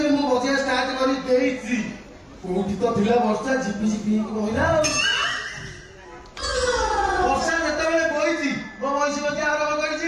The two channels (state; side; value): identical; both; correlation 1.00